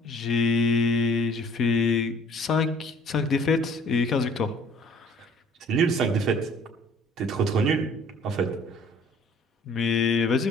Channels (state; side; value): normal; both; correlation 0.55